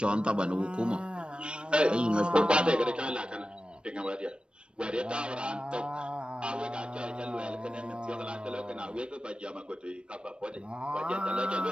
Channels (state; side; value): late; left; 0.056 ms